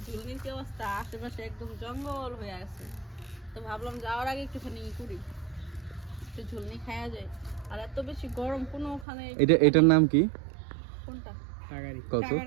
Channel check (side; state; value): left; drops out; at 9.1 s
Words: ঝুলনির কি অবস্থা, আশেপাশে একদম জঙ্গল হয়ে আছে। তো ভাবলাম যাওয়ার আগে একটুখানি করি, একটু ঝুলনি খাওয়া যায়। আর এত বেশি গরম কোনো ওখানে এটার নাম কি? কোনটা টাকারি। কত?